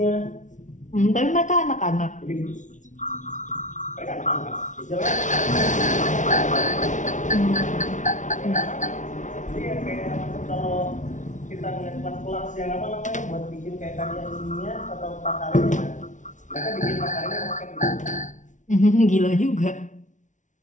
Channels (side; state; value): right; late; 0.36 ms